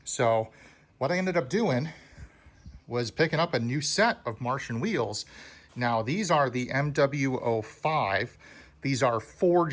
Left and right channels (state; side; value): identical; both; correlation 1.00